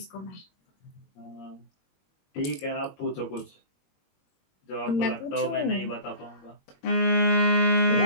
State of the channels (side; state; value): right; late; 21 ms